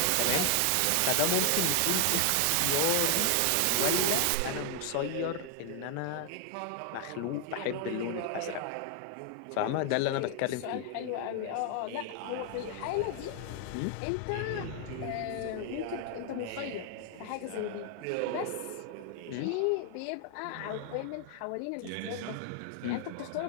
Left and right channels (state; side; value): different; both; correlation 0.00